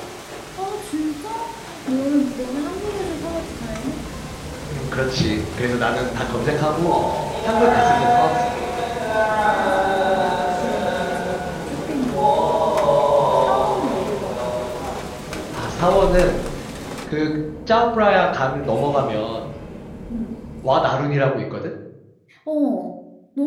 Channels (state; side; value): identical; both; correlation 1.00